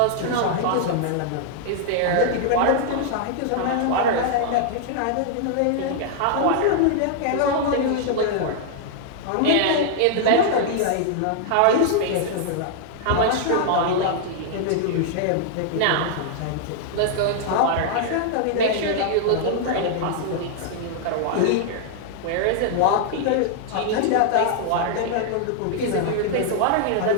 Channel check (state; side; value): different; both; correlation -0.01